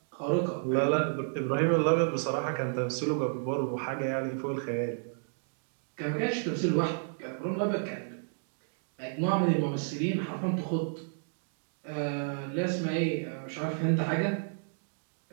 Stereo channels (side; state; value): left; silent; digital silence